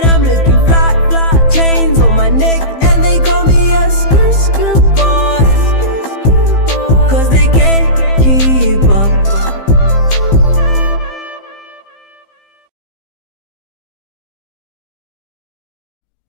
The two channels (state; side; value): late; right; 15 ms